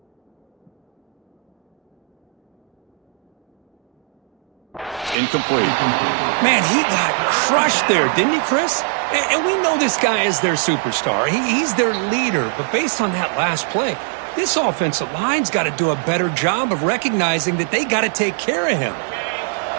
Incomplete. Man, he got crushed there, didn't he, Chris? And we know this guy is their superstar. He's their leader. But based on that last play, this offensive line's got to do a better job of recognizing that they got to take care of him.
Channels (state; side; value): drops out; left; at 5.2 s